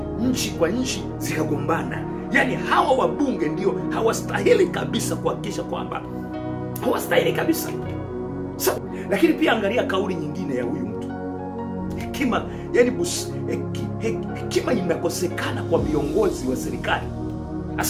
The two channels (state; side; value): identical; both; correlation 1.00